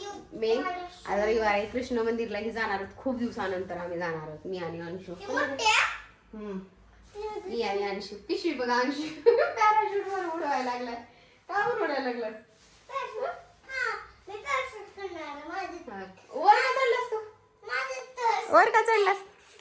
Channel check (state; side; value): identical; both; correlation 1.00